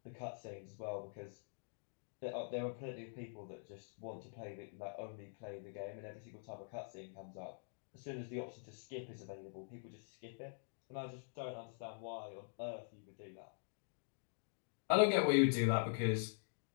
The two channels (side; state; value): right; silent; digital silence